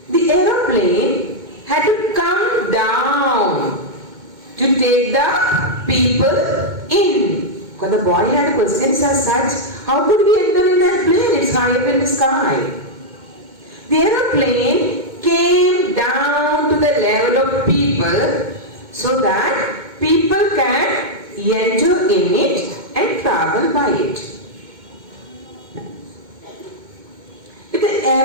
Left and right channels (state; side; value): late; left; 2.2 ms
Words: the aeroplane had to come down to take the people in. Because the boy had questions as such, how could we enter in that plane? It's high up in the sky. The aeroplane came down to the level of people so that people can enter in it and travel by it. If the